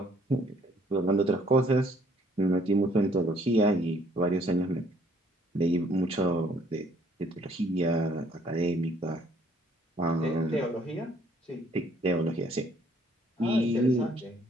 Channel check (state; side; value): normal; both; correlation 0.63